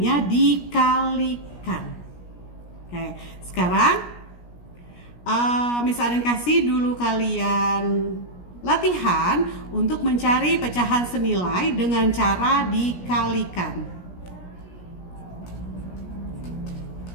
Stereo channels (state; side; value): late; right; 17 ms